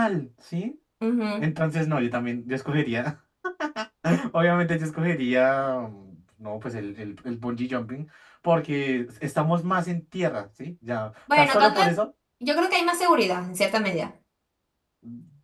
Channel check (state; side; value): identical; both; correlation 1.00